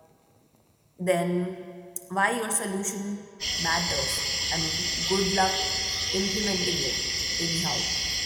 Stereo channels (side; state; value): both; identical; correlation 1.00